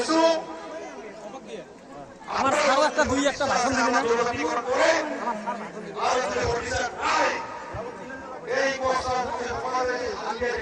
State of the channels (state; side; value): identical; both; correlation 1.00